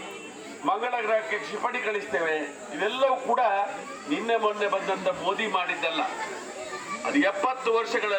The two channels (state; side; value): identical; both; correlation 1.00